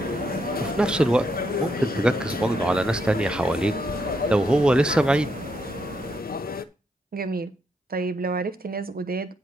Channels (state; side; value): normal; both; correlation 0.78